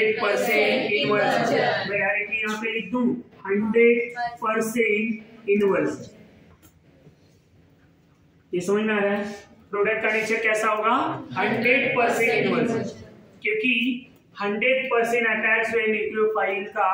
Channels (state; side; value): identical; both; correlation 1.00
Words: इनवर्स। मैं डायरेक्टली यहां पे लिख दूं 100% इनवर्स। ये समझ में आ रहा है। प्रोडक्ट का नेचर कैसा होगा, 100% इनवर्स, क्योंकि 100% अटैक जो है न्यूक्लियोफाइल का